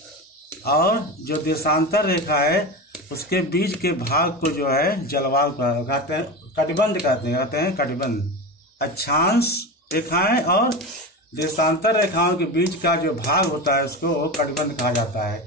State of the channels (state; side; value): normal; both; correlation 0.24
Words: और जो देशांतर रेखा है उसके बीच के भाग को जो है जलवायु कहते हैं, कटिबंध कहते हैं कटिबंध। अक्षांश रेखाएं और देशांतर रेखाओं के बीच का जो भाग होता है उसको कटिबंध कहा जाता